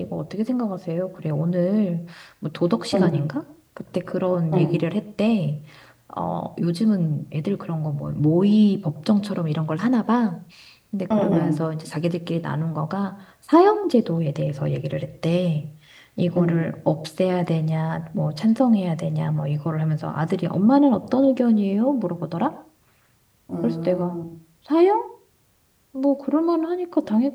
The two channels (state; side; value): identical; both; correlation 1.00